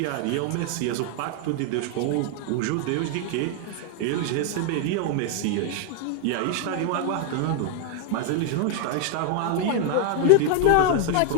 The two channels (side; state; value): both; different; correlation 0.00